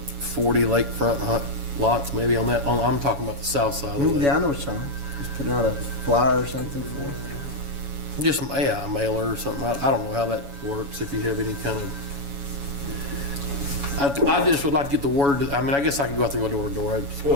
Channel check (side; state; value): left; late; 7.1 ms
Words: lakefront lots maybe on that, I'm talking about the south side of the lake. Yeah, I know what you're talking about. Just putting out a flyer or something for it. Just, a mailer or something. I don't know how that works, if you have any kind of, I just would like to get the word, I mean, I guess I could go out there and go door to door. That's